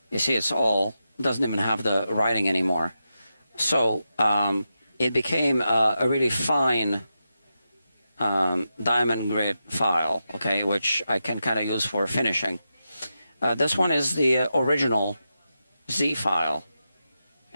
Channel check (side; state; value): both; inverted; correlation -0.88